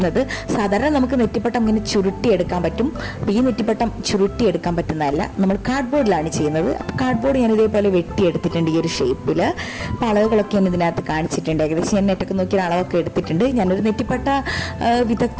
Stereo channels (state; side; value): identical; both; correlation 1.00